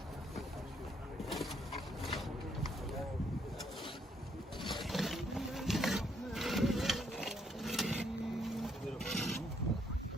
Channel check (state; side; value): normal; both; correlation 0.71